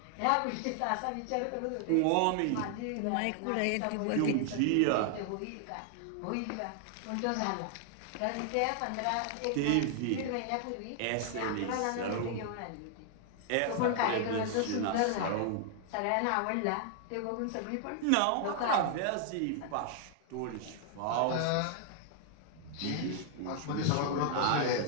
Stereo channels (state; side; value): different; both; correlation 0.00